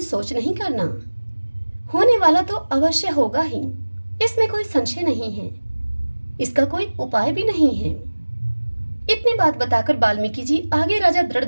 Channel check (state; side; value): inverted; both; correlation -1.00